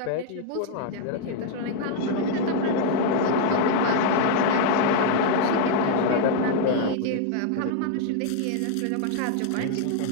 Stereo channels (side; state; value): both; different; correlation 0.00